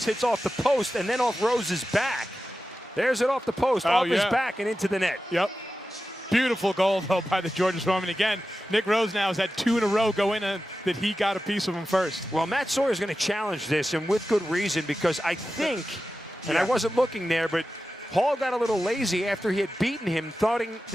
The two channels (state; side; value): normal; both; correlation 0.93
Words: hits off the post, and then off Rose's back. There's it off the post, off his back and into the net. Yep. Beautiful goal, though, by the Georgia Swarm. And again, Nick Rose now has had 2 in a row go in and that he got a piece of him first. Well, Matt Sawyer is going to challenge this, and with good reason, because I think, and I wasn't looking there, but Hall got a little lazy after he had beaten him,